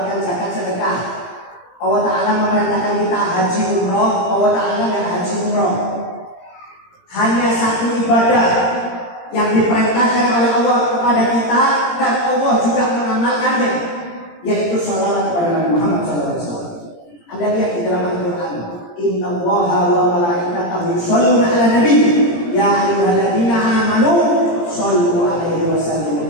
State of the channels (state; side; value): late; right; 17 ms